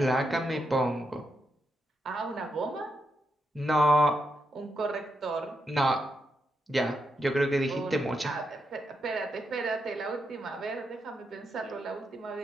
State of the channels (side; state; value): both; normal; correlation 0.83